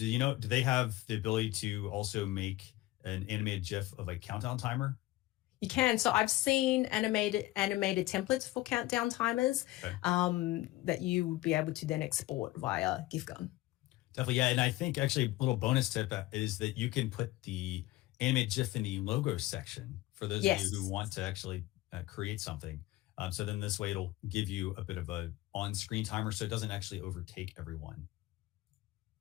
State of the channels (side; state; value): right; quieter; 17.6 dB